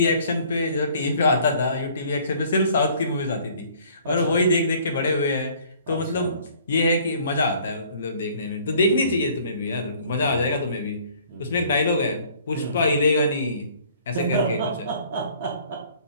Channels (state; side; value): inverted; both; correlation -0.56